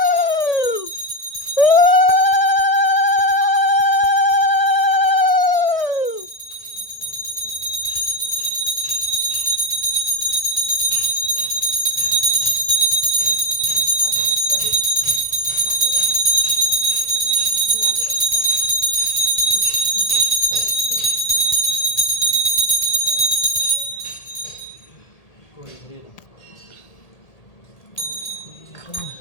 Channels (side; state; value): right; late; 1.8 ms